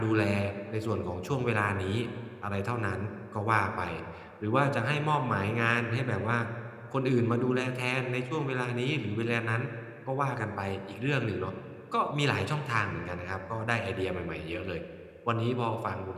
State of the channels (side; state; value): both; identical; correlation 1.00